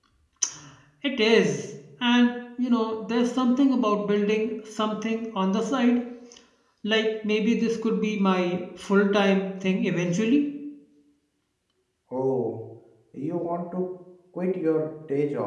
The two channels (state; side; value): identical; both; correlation 1.00